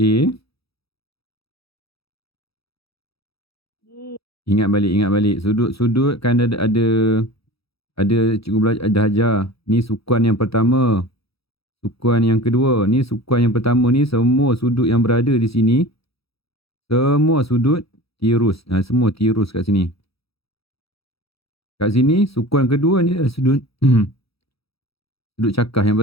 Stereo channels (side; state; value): right; late; 0.77 ms